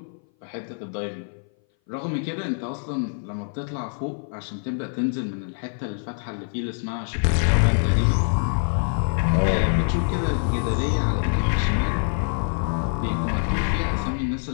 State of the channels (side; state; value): right; silent; 58 dB below the other